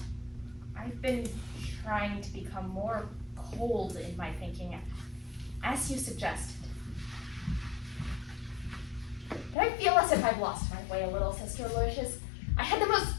I've been trying to become more cold in my thinking, as you suggested. But I feel as if I've lost my way a little, Sister Aloysius. I had the most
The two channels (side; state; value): right; drops out; at 9.6 s